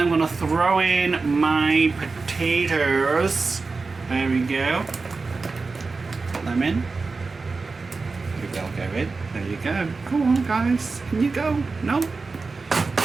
I'm going to throw in my potatoes. There we go. Put them in. They'll go in. There you go. Go on, guys. Can you go? No.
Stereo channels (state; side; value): quieter; left; 4.1 dB